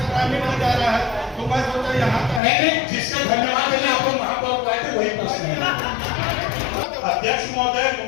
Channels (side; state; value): right; drops out; at 2.4 s